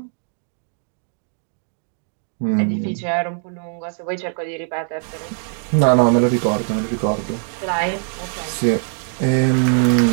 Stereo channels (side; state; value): left; silent; 55 dB below the other